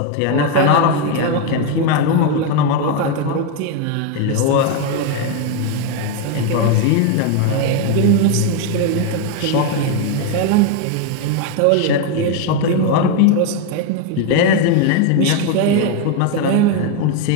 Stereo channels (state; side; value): different; both; correlation 0.01